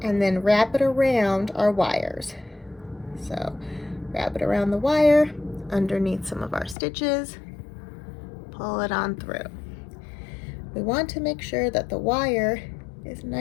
and then wrap it around our wires. So wrap it around the wire, underneath some of our stitches, pull it on through. We want to make sure that the wire is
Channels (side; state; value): right; drops out; at 6.8 s